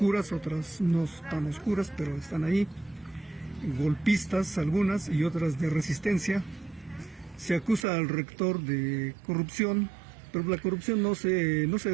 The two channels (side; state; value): left; drops out; at 7.9 s